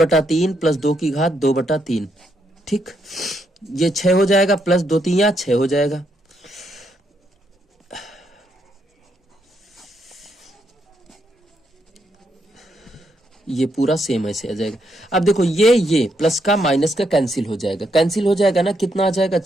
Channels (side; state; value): both; normal; correlation 0.77